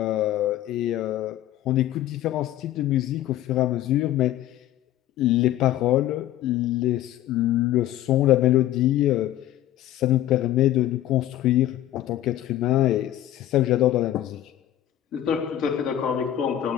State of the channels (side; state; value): right; quieter; 13.0 dB